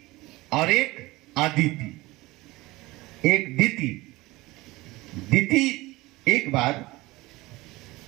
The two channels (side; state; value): left; quieter; 20.4 dB